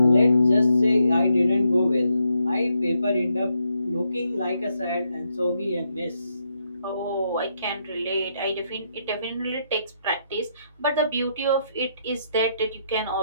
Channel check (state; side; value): inverted; both; correlation -0.78